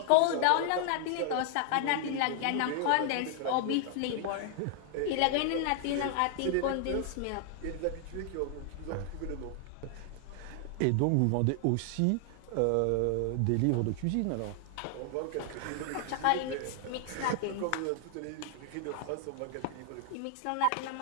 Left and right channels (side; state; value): both; different; correlation 0.00